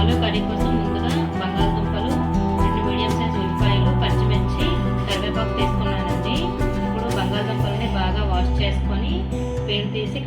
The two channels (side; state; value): both; identical; correlation 1.00